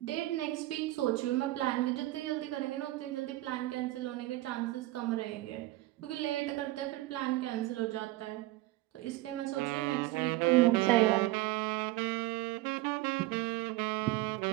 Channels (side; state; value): left; quieter; 18.1 dB